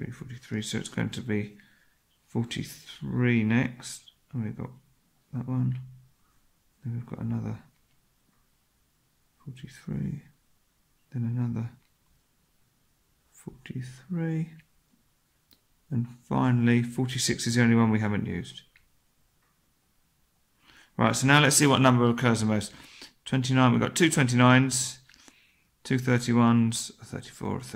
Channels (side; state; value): both; identical; correlation 1.00